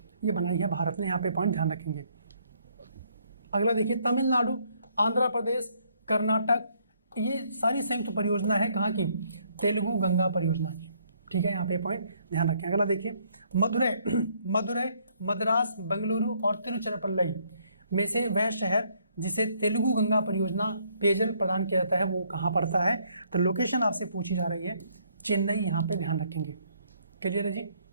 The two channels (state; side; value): inverted; both; correlation -0.68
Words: ये बनाई है भारत ने, यहाँ पे पॉइंट ध्यान रखेंगे। अगला देखिए, तमिलनाडु, आंध्र प्रदेश, कर्नाटक, ये सारी संयुक्त परियोजना है कहाँ की? तेलुगु गंगा परियोजना की। ठीक है, यहाँ पे पॉइंट ध्यान रखें। अगला देखिए, मदुरै, मद्रास, बेंगलुरु और तिरुचिरापल्ली में से वह शहर जिसे तेलुगु गंगा परियोजना पेयजल प्रदान किया जाता है वो कहाँ पड़ता है? तो लोकेशन आपसे पूछी जा रही है, चेन्नई, यहाँ पे ध्यान रखेंगे। क्लियर है जी।